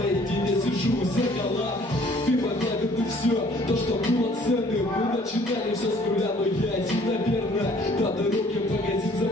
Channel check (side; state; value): both; normal; correlation 0.57